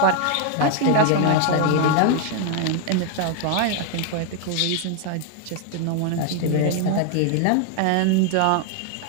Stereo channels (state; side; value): different; both; correlation 0.01